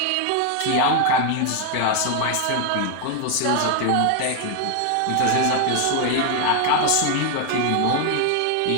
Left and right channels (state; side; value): different; both; correlation 0.00